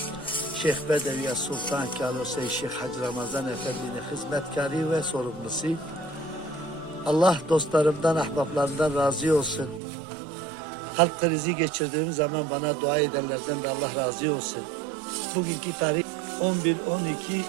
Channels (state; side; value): drops out; left; at 9.8 s